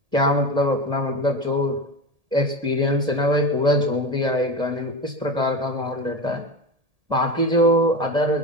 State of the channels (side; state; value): left; late; 1.8 ms